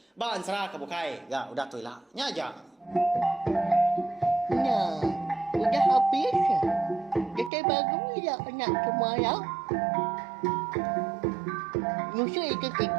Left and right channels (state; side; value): drops out; left; at 7.5 s